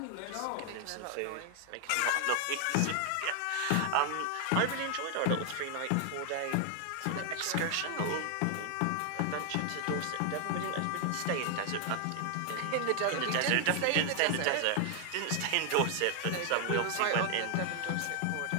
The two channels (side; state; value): both; different; correlation 0.00